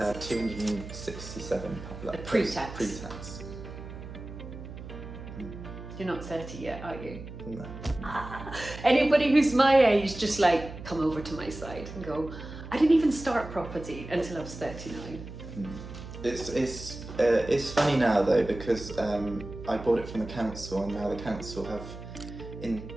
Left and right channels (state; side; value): noise; right; hum, 12 dB below the sound